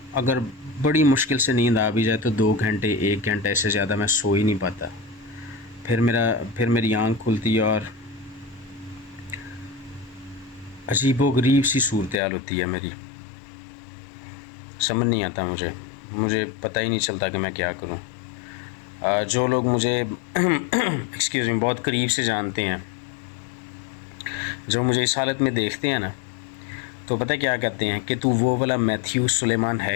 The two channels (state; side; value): drops out; right; at 12.2 s